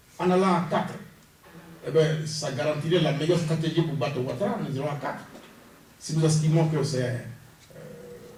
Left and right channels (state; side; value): identical; both; correlation 1.00